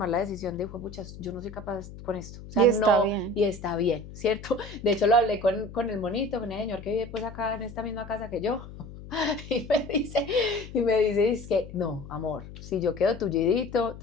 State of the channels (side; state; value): left; noise; hum, 14 dB below the sound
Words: la decisión de, puchas, yo no soy capaz con esto. O sea, y está bien, ¿cierto? De hecho, lo hablé con el monito, con el señor que vive pues acá en esta misma casa que yo. Y me dice, es que, no, amor, si yo quedo tullidito,